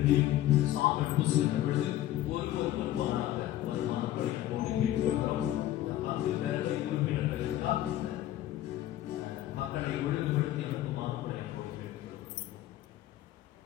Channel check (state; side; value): quieter; right; 13.7 dB